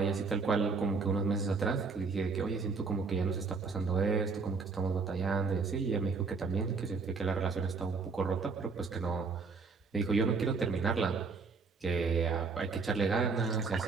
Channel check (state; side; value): quieter; left; 4.6 dB